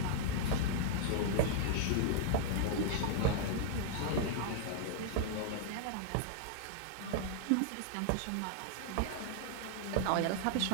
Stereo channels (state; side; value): different; both; correlation 0.00